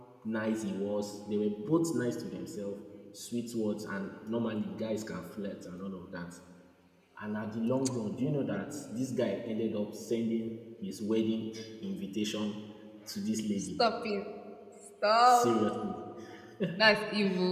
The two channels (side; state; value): both; identical; correlation 1.00